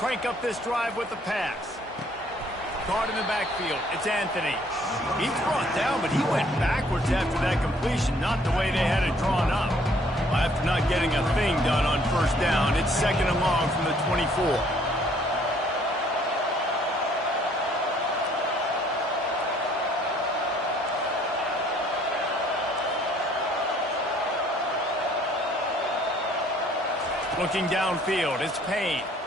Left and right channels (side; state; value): both; normal; correlation 0.61